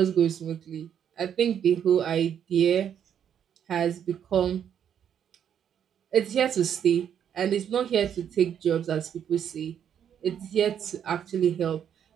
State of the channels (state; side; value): quieter; left; 8.9 dB